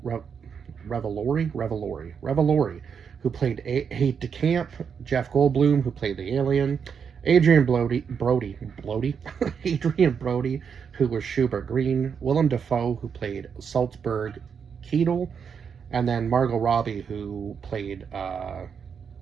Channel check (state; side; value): quieter; left; 6.8 dB